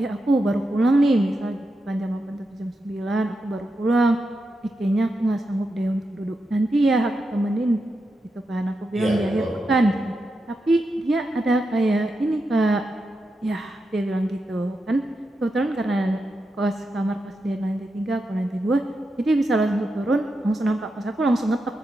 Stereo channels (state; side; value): normal; both; correlation 0.87